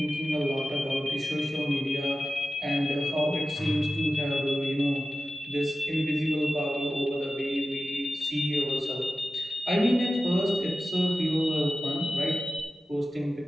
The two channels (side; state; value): both; normal; correlation 0.94